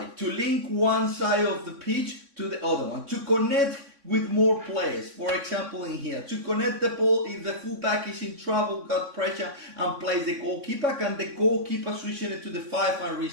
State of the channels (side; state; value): left; late; 3.6 ms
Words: to link one side of the pitch to the other one, to connect with more players. For example, in here, to connect the ball, if the fullback is in trouble, got pressure and plays the goalkeeper, can the goalkeeper switch it to the 5 and